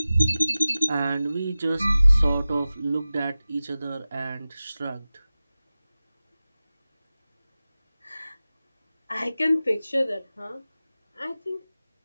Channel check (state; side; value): inverted; both; correlation -0.96